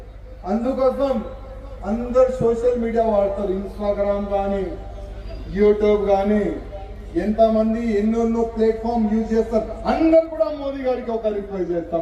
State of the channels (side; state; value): both; identical; correlation 1.00